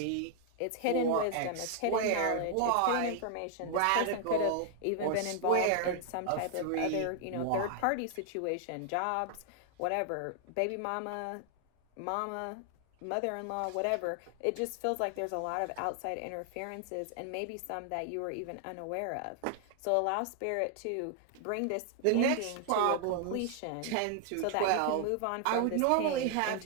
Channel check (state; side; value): different; both; correlation 0.00